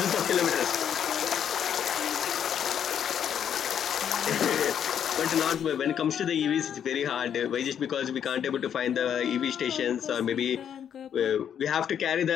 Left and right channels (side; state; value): right; quieter; 8.8 dB